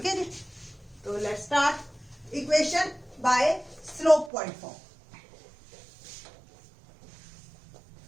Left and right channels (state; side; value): drops out; left; at 4.3 s